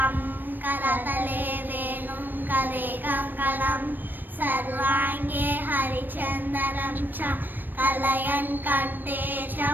करतले वेणुं करे कङ्कणं सर्वाङ्गे हरिचन्दनं च कलयन् कण्ठे च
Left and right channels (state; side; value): late; left; 0.092 ms